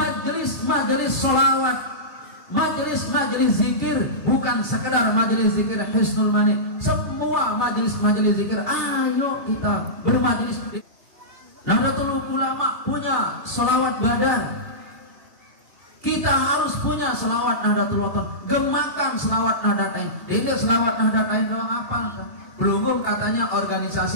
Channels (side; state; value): left; late; 3.2 ms